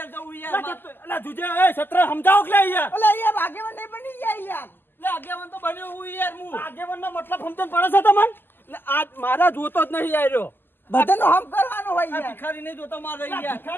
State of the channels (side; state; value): right; late; 0.096 ms